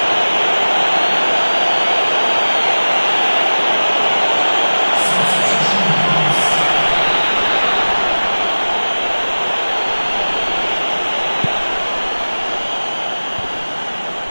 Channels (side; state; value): both; inverted; correlation -1.00